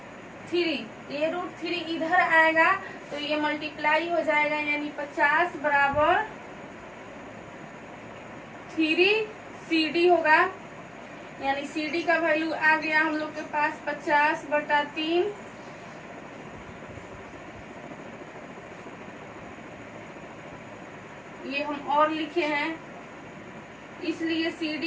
ये √3 इधर आएगा तो ये मल्टीप्लाई हो जाएगा, यानी 50 बराबर 3 CD होगा। यानी CD का वैल्यू आ गया हम लोग के पास 50/3। ये हम और लिखे हैं, इसलिए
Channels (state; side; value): noise; left; hum, 29 dB below the sound